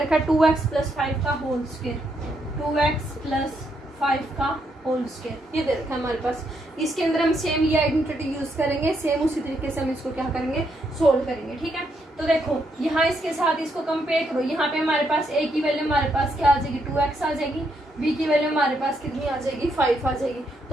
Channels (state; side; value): normal; both; correlation 0.77